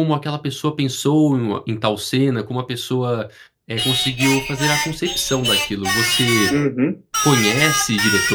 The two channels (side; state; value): both; identical; correlation 1.00